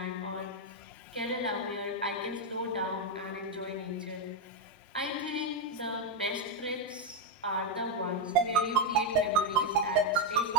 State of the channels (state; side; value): normal; both; correlation 0.03